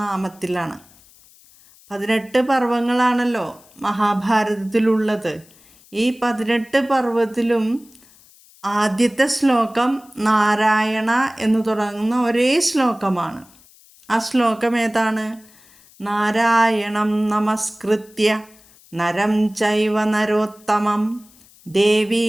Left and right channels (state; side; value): noise; left; hiss, 27 dB below the sound